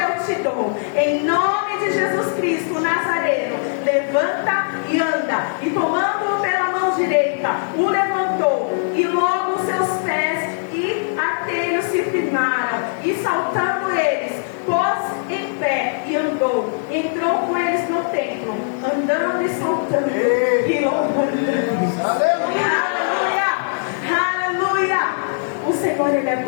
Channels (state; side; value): silent; right; digital silence